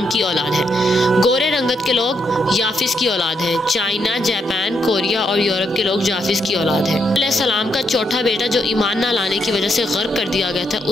کی اولاد ہیں۔ گورے رنگت کے لوگ یافس کی اولاد ہیں۔ چائنا، جاپان، کوریا اور یورپ کے لوگ جافس کی اولاد ہیں۔ علیہ السلام کا چوتھا بیٹا جو ایمان نہ لانے کی وجہ سے غرق کر دیا گیا تھا،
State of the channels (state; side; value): normal; both; correlation 0.78